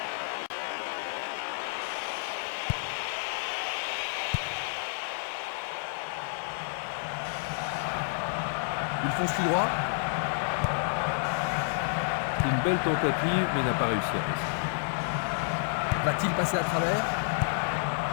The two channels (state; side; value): silent; right; digital silence